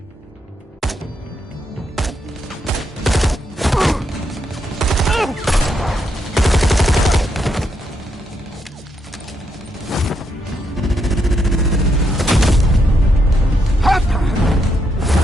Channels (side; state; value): both; normal; correlation 0.79